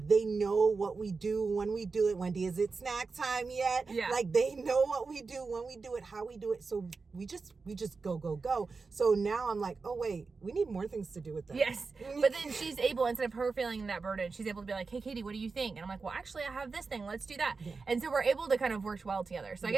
they know what we do when we do it. Wendy, is it snack time yet? Yeah. Like, they know what we do when we do it, how we do it. So we just go. So now I'm like, oh wait, we need more things to do with them. Yes. But then she's able, instead of her feeling that burden, she's able to be like, hey Katie, what do you think? And I'm like, well, actually I have this thing, let's do that. Yeah. And so we're able to kind of work well together. So I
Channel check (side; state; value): left; quieter; 4.4 dB